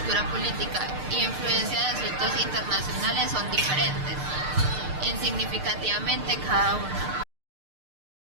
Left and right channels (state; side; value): late; left; 6.6 ms